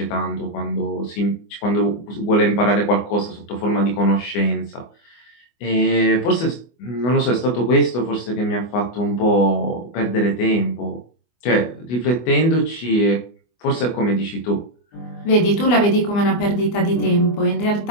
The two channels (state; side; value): late; right; 24 ms